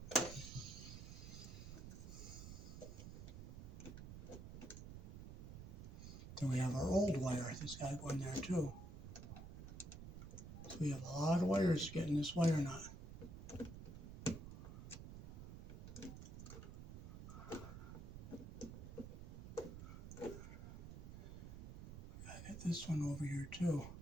Then we have our old wire. This guy going there too. So we have a lot of wires getting this wire nut. I got this one over here too.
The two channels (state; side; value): noise; right; rumble, 9 dB below the sound